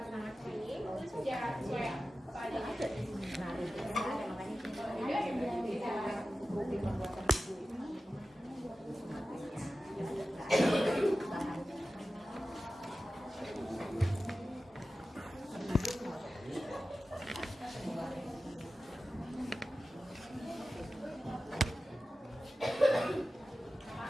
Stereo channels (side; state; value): both; normal; correlation 0.95